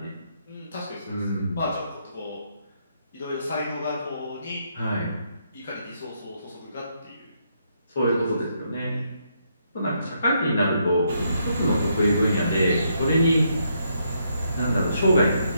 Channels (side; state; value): both; inverted; correlation -0.76